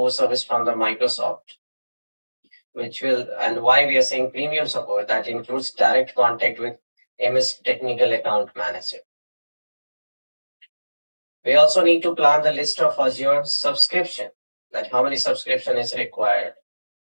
service from the Microsoft, which will, and why we are saying premium support, that includes direct contact with MS Technical Account Manager. We also need to plan the list of Azure subscription, that how many subscription is required,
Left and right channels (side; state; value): both; inverted; correlation -1.00